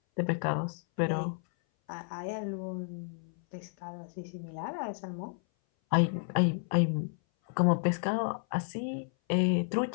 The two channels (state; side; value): silent; right; 57 dB below the other